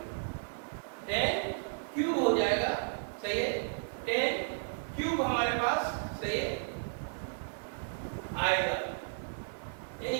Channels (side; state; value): left; silent; 55 dB below the other